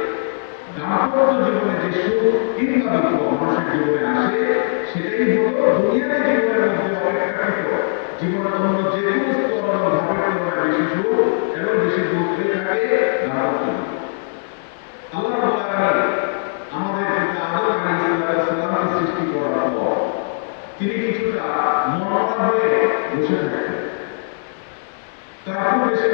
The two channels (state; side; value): silent; right; digital silence